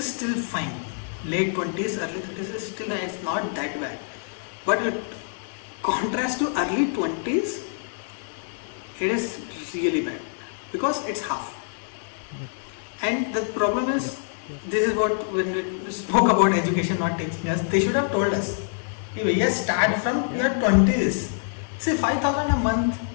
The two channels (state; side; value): silent; right; digital silence